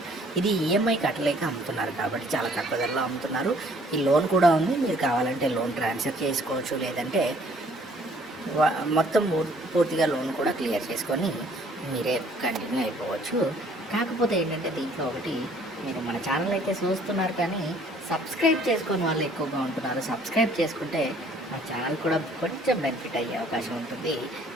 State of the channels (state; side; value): normal; both; correlation 0.59